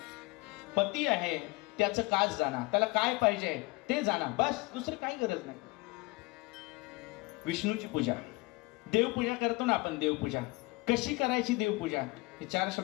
पती आहे, त्याचं काज जाणा. त्याला काय पाहिजे ते जाणा, बस. दुसरी काही गरज नाही. विष्णूची पूजा, देवपूजा करतो ना आपण. देवपूजा कशी करायची, देवपूजा हे 4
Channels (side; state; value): right; quieter; 24.2 dB